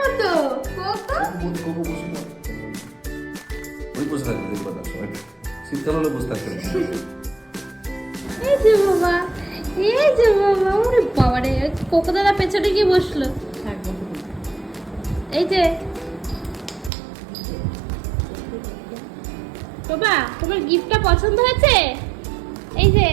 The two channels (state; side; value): drops out; left; at 16.9 s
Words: কোকো? কোকো বসে না। ওই বসে থাকবে, দেখবে না সময়। শীতকাল হলে বসে থাকবে না। এই যে বাবা, এই যে বাবা, ওরে বাবা রে, কোকো দাদা পেছনে গিয়ে বসলো। থাকবো এই যে বাবা, তোমার গিফটটা পছন্দ হয়েছে? এই যে